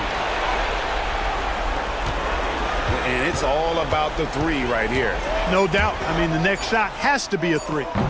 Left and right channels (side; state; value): both; identical; correlation 1.00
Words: And it's all about the three right here. No doubt. I mean, the next shot has to be a 3.